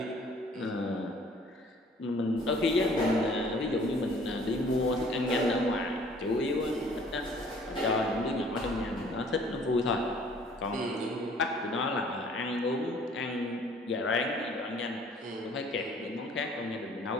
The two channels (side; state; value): both; normal; correlation 0.55